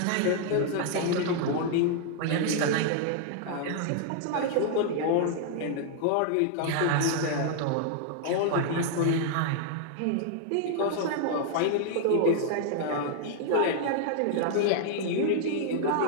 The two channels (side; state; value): both; different; correlation -0.01